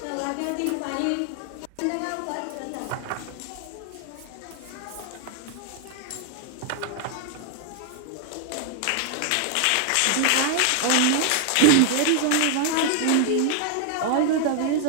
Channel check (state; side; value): different; both; correlation 0.00